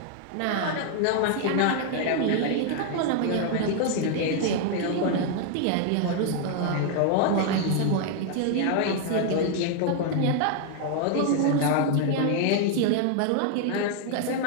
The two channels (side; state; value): both; different; correlation 0.00